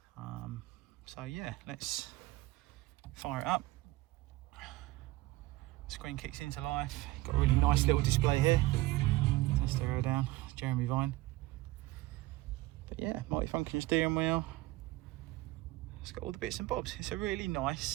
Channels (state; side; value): quieter; left; 18.5 dB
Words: So yeah, let's fire it up. Screen kicks into life. Got a really nice little display here. Let's stereo down, Jeremy Vine. But yeah, multifunction steering wheel. It's got all the bits and bobs. It's a really